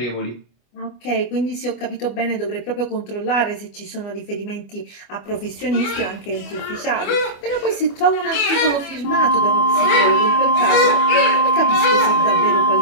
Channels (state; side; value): late; right; 25 ms